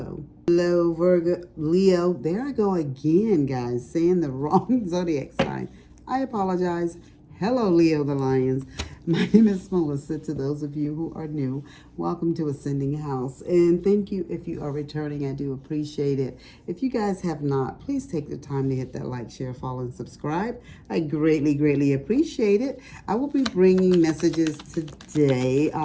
Hello, Virgo, Leo. There I go again, guys, saying the wrong zodiac sign. I apologize. Hello, Leo the Lions. My name is Melissa. To those of you who are new, welcome to Ascending House. And thank you if you are returning. I do appreciate it. If you guys have not, please take the time to hit that like, share, follow, and subscribe. I greatly, greatly appreciate it. I will be bringing messages today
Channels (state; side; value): identical; both; correlation 1.00